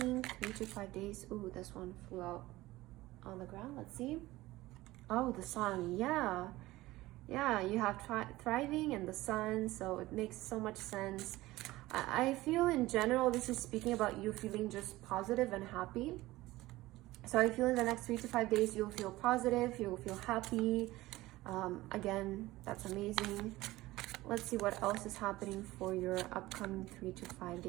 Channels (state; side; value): quieter; left; 18.1 dB